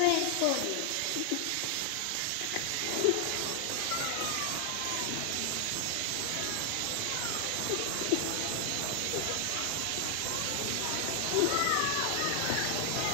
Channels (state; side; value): different; both; correlation 0.00